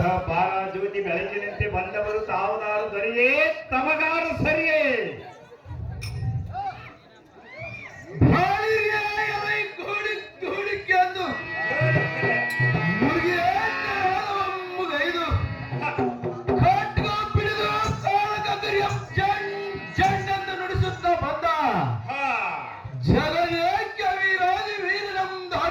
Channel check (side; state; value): both; identical; correlation 1.00